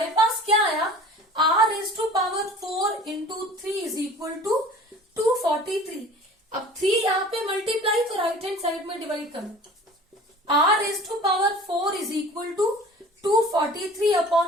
पास क्या आया? r raise to power 4 into 3 is equal to 243। अब 3 यहाँ पे मल्टीप्लाई तो राइट हैंड साइड में डिवाइड करो। r raise to power 4 is equal to 243 upon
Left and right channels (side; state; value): both; normal; correlation 0.43